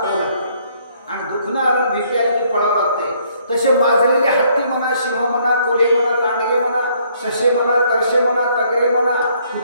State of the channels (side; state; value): both; inverted; correlation -0.66